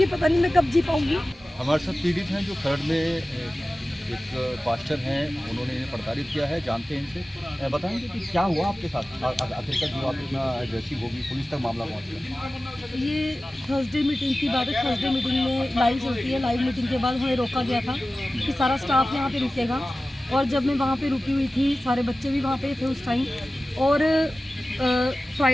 पता नहीं मैं कब जी पाऊँगी। हमारे साथ पीड़ित हैं जो खरड़ में एक पास्टर हैं, उन्होंने इन्हें प्रताड़ित किया है, जानते हैं इनसे। बताएंगे कि क्या हुआ आपके साथ आखिरकार जो आप इतना एग्रेसिव होगी, पुलिस तक मामला पहुँच गया? ये थर्सडे मीटिंग की बात है। थर्सडे मीटिंग में लाइव चलती है। लाइव मीटिंग के बाद हमें रोका गया था कि सारा स्टाफ यहाँ पे रुकेगा, और जब मैं वहाँ पे रुकी हुई थी, सारे बच्चे भी वहाँ पे थे उस टाइम। और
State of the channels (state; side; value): normal; both; correlation 0.96